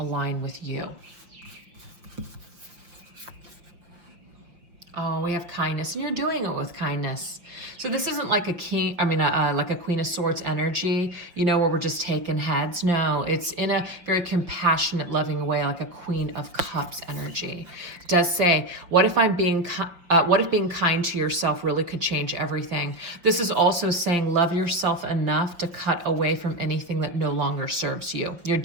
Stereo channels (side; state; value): left; late; 5.4 ms